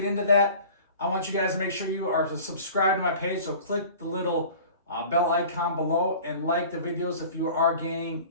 into that, I want you guys to make sure you are subscribed to my page. So click the little bell icon below and like the videos if you are gaining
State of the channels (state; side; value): inverted; both; correlation -0.43